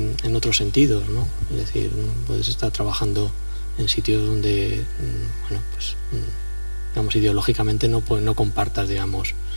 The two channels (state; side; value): inverted; both; correlation -1.00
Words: otros sentidos, ¿no? Es decir, puedes estar trabajando en sitios donde, bueno, pues digamos, ideológicamente no compartas, digamos,